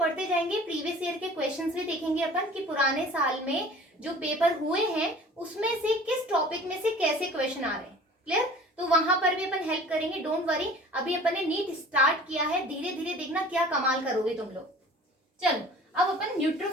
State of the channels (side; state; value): both; normal; correlation 0.45